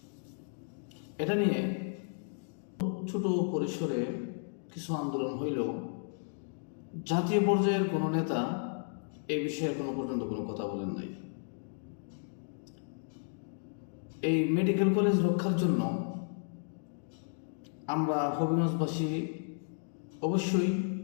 এটা নিয়ে ছোট পরিসরে কিছু আন্দোলন হইলেও জাতীয় পর্যায়ের কোনো নেতা এই বিষয়ে এখনো পর্যন্ত কোনো কথা বলেন নাই। এই মেডিকেল কলেজ রক্ষার জন্য আমরা হবিগঞ্জবাসী অবশ্যই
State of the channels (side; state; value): right; silent; digital silence